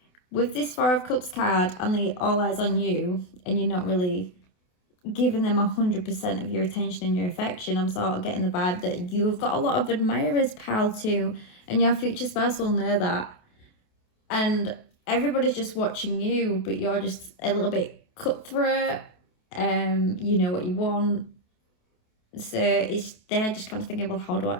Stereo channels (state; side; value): late; right; 28 ms